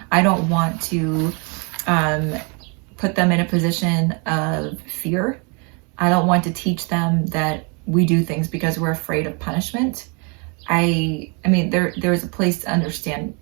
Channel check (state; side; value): quieter; left; 33.8 dB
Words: I don't want to put them in a position of fear. I don't want to teach them that we do things because we're afraid of punishment. I mean, there's a place to understand